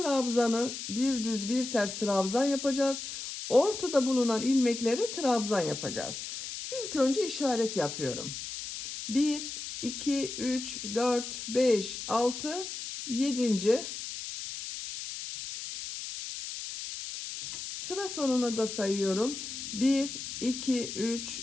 bir düz bir ters trabzan yapacağız. Ortada bulunan ilmeklere trabzan yapacağız. İlk önce işaret yapıyorum. 1, 2, 3, 4, 5, 6, 7. Sıra sonuna da sayıyorum. 1, 2, 3,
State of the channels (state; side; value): noise; left; hiss, 7 dB below the sound